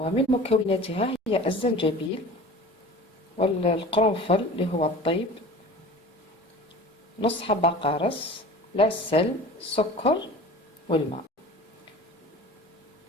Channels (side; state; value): both; normal; correlation 0.40